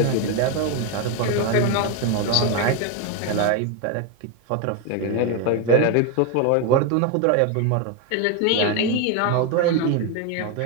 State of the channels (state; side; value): different; both; correlation 0.02